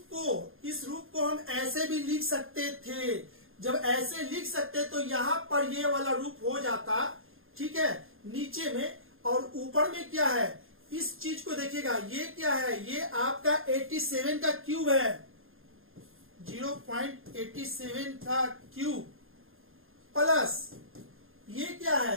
को हम ऐसे भी लिख सकते थे। जब ऐसे लिख सकते तो यहां पर ये वाला रूप हो जाता, ठीक है, नीचे में, और ऊपर में क्या है, इस चीज को देखिएगा, ये क्या है, ये आपका 87 का क्यूब है, 0.87 का क्यूब, प्लस ये क्या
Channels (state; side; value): late; left; 0.60 ms